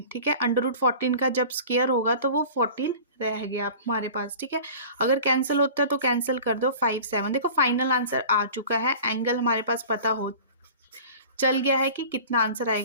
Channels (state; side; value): inverted; both; correlation -0.41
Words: ठीक है, √14 का जब स्क्वायर होगा तो वो 14 रह गया हमारे पास। ठीक है, अगर कैंसिल होता है तो कैंसिल कर दो, 5 7। देखो फाइनल आंसर आ चुका है, एंगल हमारे पास पता हो चल गया है कि कितना आंसर